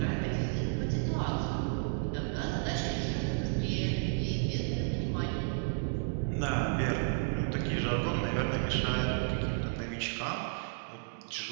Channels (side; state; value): left; silent; digital silence